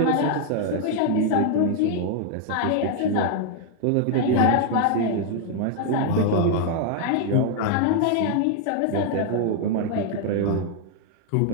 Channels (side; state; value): both; different; correlation 0.00